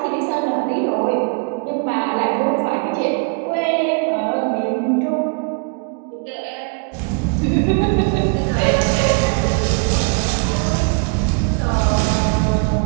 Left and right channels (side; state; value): left; quieter; 37.2 dB